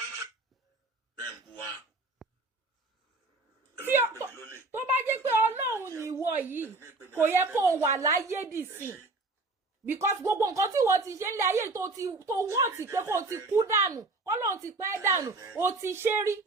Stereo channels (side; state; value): left; quieter; 3.3 dB